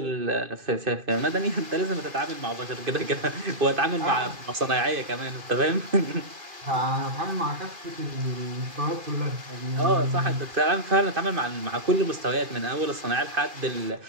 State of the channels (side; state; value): left; late; 2.5 ms